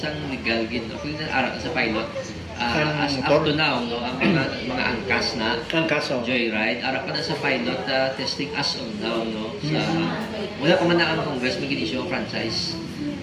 legal gid. Ako na aral sa pilot. As up to now, no, ang mga angkas na Ang kaso. joyride, ara pa na sa pilot testing as of now, no. Sa wala pa man na ang Congress mag-issue ng franchise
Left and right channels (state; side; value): identical; both; correlation 1.00